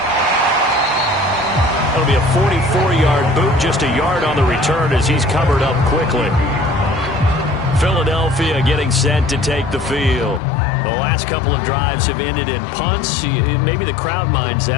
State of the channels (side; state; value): right; drops out; at 10.4 s